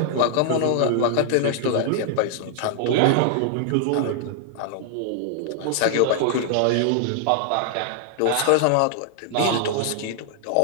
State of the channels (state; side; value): different; both; correlation -0.01